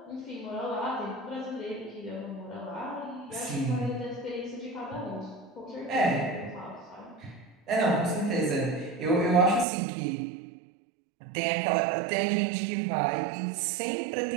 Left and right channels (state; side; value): drops out; left; at 9.7 s